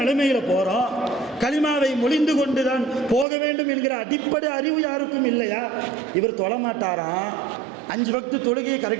போகிறோம், கலிமாவை மொழிந்து கொண்டு தான் போக வேண்டும் என்கிற அடிப்படை அறிவு யாருக்கும் இல்லையா? இவர் தொழமாட்டாராம், 5 வக்து தொழுகையை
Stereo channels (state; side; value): drops out; left; at 3.2 s